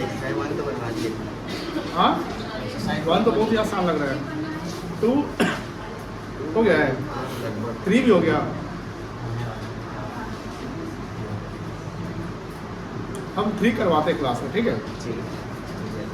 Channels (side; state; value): both; identical; correlation 1.00